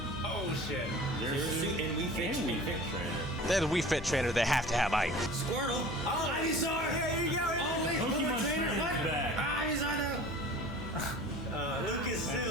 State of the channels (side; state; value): left; noise; hum, 13 dB below the sound